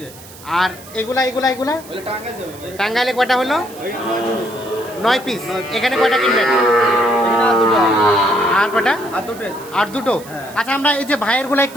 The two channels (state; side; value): noise; right; hiss, 19 dB below the sound